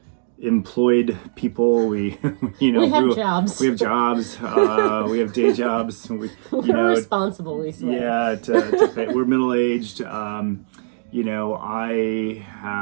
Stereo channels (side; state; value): left; silent; digital silence